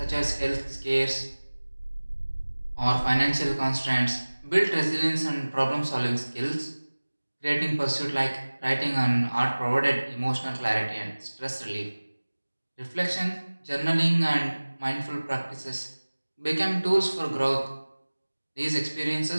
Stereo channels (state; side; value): inverted; both; correlation -1.00